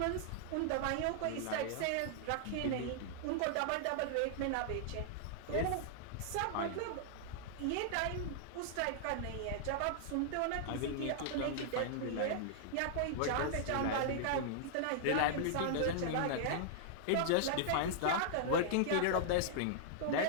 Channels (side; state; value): both; different; correlation -0.01